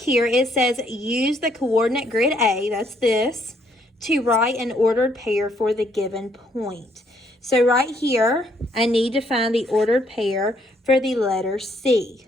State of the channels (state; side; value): normal; both; correlation 0.69